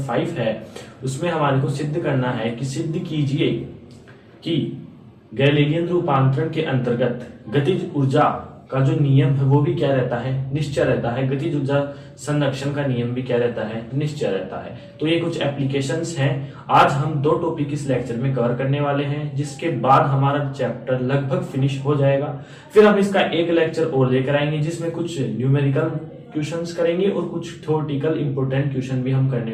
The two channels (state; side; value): identical; both; correlation 1.00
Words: 5 है उसमें हमारे को सिद्ध करना है कि सिद्ध कीजिए कि गैलीलियन रूपांतरण के अंतर्गत गतिज ऊर्जा का जो नियम है वो भी क्या रहता है, निश्चय रहता है। गतिज ऊर्जा संरक्षण का नियम भी क्या रहता है, निश्चय रहता है। तो ये कुछ एप्लीकेशंस हैं। आज हम 2 टॉपिक इस लेक्चर में कवर करने वाले हैं, जिसके बाद हमारा चैप्टर लगभग फिनिश हो जाएगा। फिर हम इसका एक लेक्चर और लेकर आएंगे जिसमें कुछ न्यूमेरिकल क्वेश्चंस करेंगे और कुछ थ्योरेटिकल इंपोर्टेंट क्वेश्चन भी हम